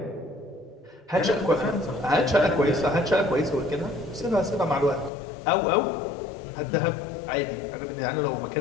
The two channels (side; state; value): right; drops out; at 5.1 s